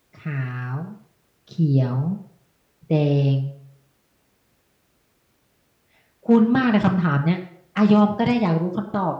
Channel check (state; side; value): identical; both; correlation 1.00